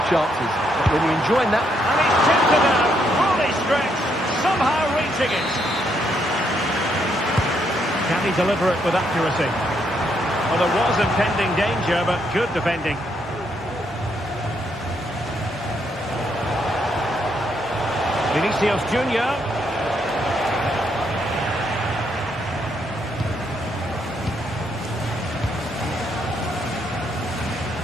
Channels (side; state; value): both; normal; correlation 0.75